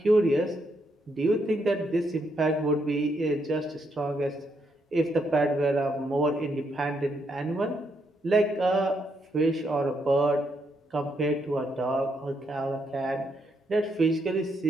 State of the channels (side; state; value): both; normal; correlation 0.77